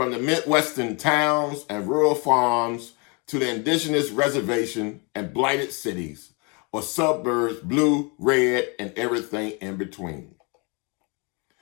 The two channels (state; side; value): quieter; right; 32.0 dB